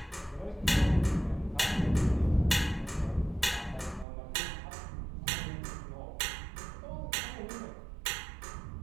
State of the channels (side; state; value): left; drops out; at 4.0 s